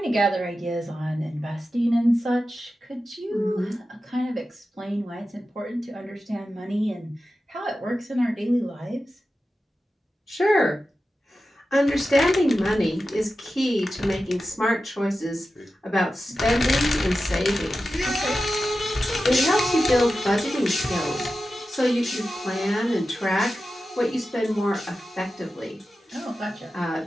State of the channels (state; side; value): normal; both; correlation 0.93